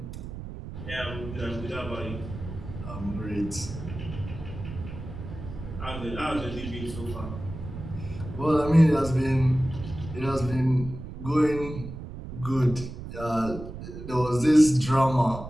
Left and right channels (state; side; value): noise; right; rumble, 10 dB below the sound